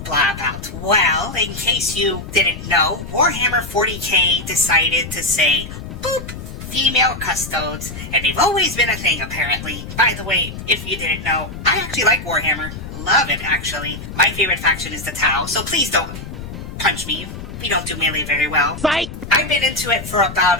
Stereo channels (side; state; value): left; noise; rumble, 10 dB below the sound